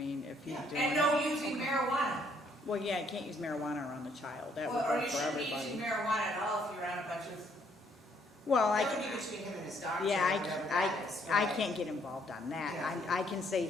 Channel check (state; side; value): normal; both; correlation 0.68